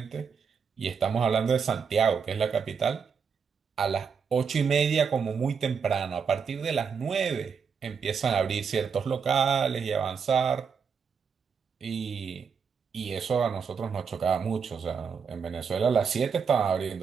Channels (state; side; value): quieter; left; 6.1 dB